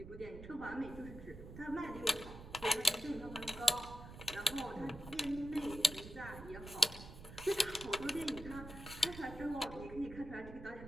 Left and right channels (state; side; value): noise; right; rumble, 13 dB below the sound